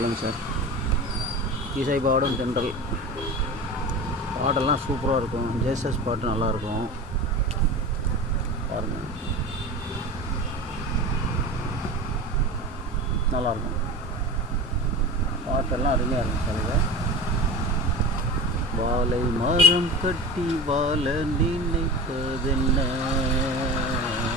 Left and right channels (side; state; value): both; normal; correlation 0.30